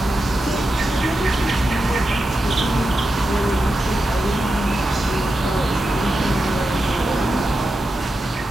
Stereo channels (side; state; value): both; normal; correlation 0.89